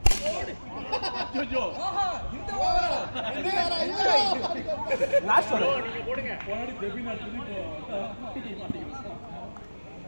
இந்த ஓவரா லாஸ்ட் ஓவர் நீங்க போடுங்க. போனாடி ஜெபின் அடிச்சு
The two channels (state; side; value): inverted; both; correlation -1.00